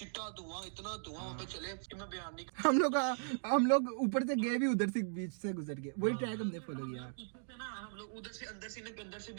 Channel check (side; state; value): left; silent; digital silence